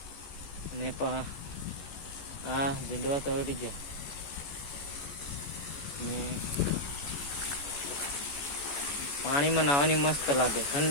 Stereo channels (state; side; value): late; right; 14 ms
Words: ने आ झुंडवा तोड़ी गया ने पानी में नहावानी मस्त लागे